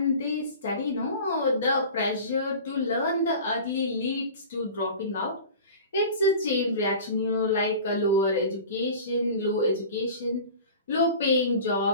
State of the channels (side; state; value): both; inverted; correlation -0.38